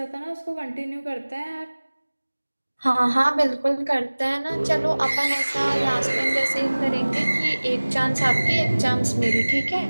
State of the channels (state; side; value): inverted; both; correlation -1.00